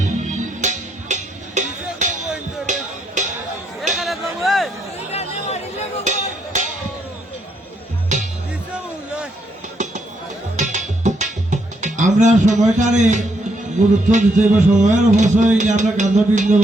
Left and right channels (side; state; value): both; normal; correlation 0.75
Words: আমরা সময়টারে গুরুত্ব দিতে হবে, সময়ের অবশ্যই আমরা কান্দ বৃন্দ